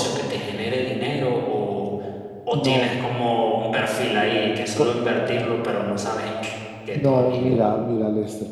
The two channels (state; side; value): identical; both; correlation 1.00